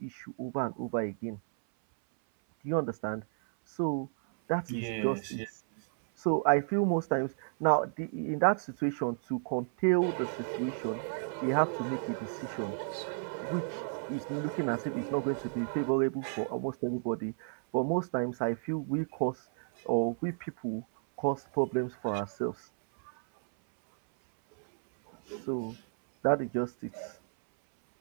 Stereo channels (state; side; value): silent; left; 56 dB below the other